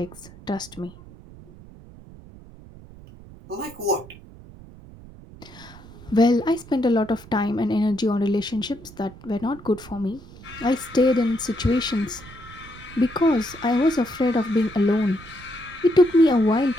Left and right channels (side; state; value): right; noise; rumble, 19 dB below the sound